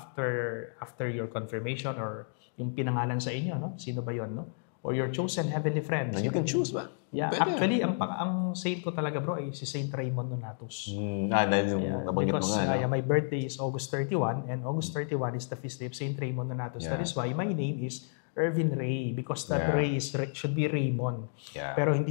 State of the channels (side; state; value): right; silent; digital silence